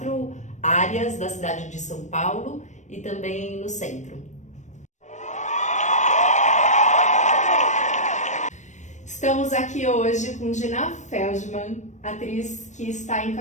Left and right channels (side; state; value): right; late; 0.35 ms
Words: áreas da cidade de São Paulo e também no centro. Estamos aqui hoje com Dina Feldman, atriz que está